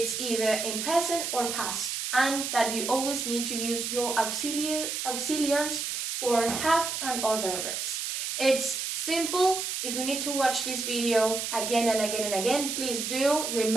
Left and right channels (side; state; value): right; noise; hiss, 3 dB below the sound